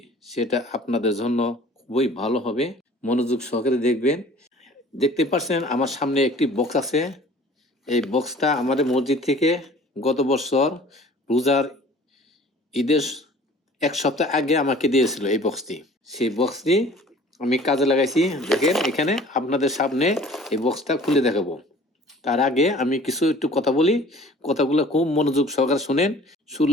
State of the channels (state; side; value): normal; both; correlation 0.48